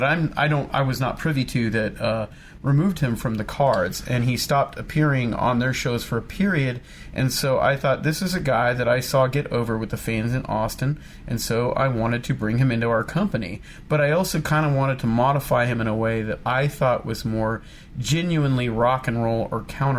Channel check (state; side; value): identical; both; correlation 1.00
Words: I was not privy to that removed him from the cards, and he stopped appearing on their shows for a period. And so I thought, this is a guy that I saw get over with the fans in Austin, and so I wanted to bring him into our company. But I also kind of wanted to modify him in a way that I thought was more genuinely rock and roll or